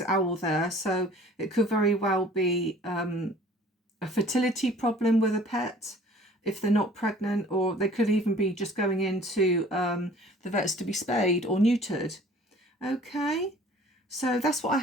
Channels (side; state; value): both; normal; correlation 0.50